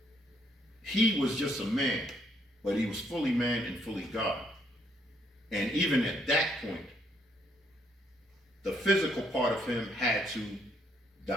he was just a man, but he was fully man and fully God. And even at that point, the physical part of him had to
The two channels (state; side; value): normal; both; correlation 0.71